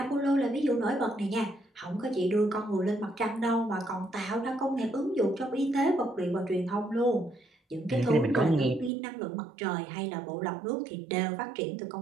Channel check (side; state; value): left; drops out; at 8.9 s